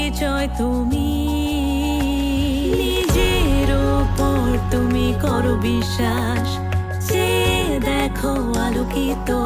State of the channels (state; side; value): identical; both; correlation 1.00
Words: তুমি। নিজের ওপর তুমি করো বিশ্বাস, যে দেখো আলোকিত